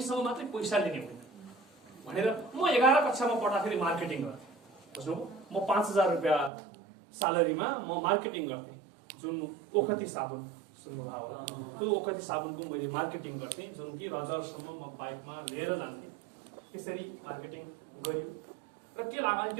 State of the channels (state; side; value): drops out; left; at 6.5 s